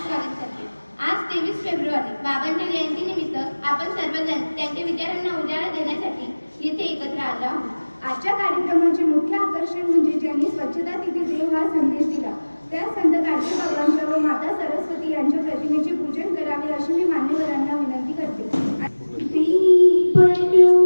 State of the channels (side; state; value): both; inverted; correlation -1.00